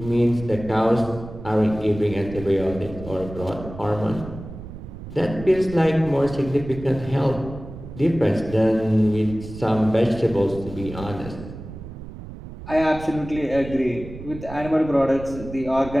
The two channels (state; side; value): noise; right; rumble, 12 dB below the sound